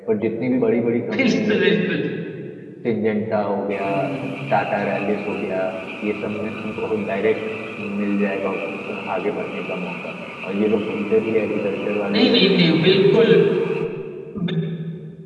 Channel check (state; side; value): identical; both; correlation 1.00